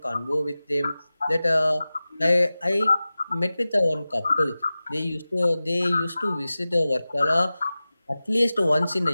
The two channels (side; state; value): both; inverted; correlation -0.96